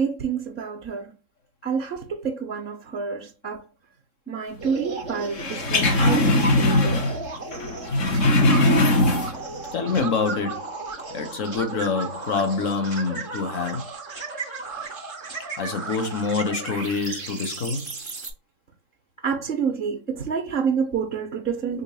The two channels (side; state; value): right; late; 3.7 ms